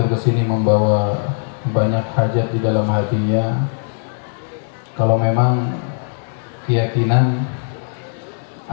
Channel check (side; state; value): right; silent; 66 dB below the other